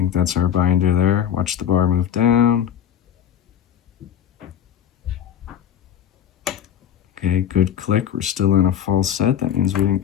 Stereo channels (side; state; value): right; quieter; 9.4 dB